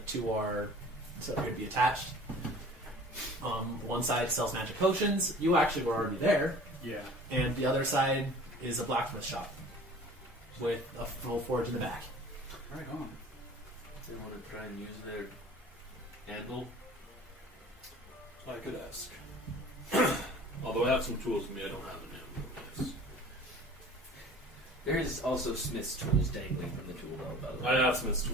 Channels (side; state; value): both; normal; correlation 0.45